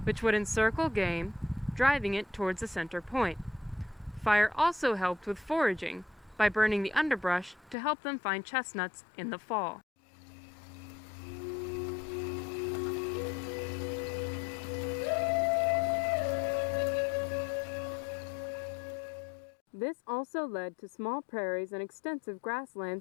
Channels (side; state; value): right; drops out; at 7.8 s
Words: which would encircle game, driving it towards a center point. Fire also helped with foraging by burning the underbrush to help them find chestnuts in the fall. This also led to small prairies and extensive